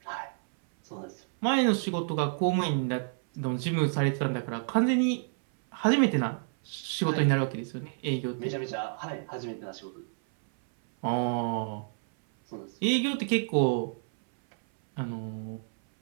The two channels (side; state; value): left; silent; 58 dB below the other